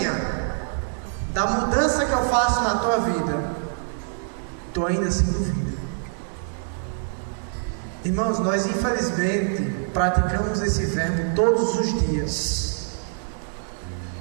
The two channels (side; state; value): left; silent; digital silence